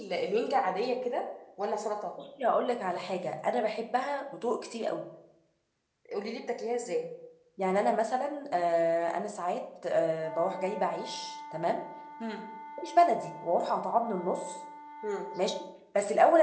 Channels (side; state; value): both; identical; correlation 1.00